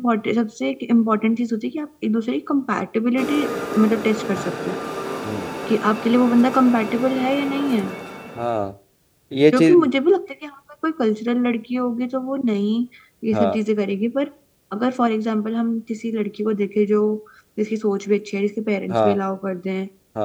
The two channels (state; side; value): identical; both; correlation 1.00